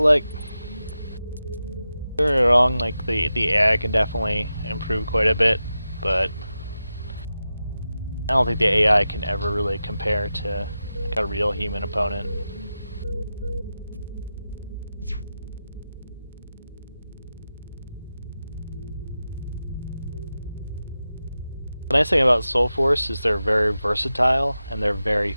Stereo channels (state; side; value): inverted; both; correlation -0.92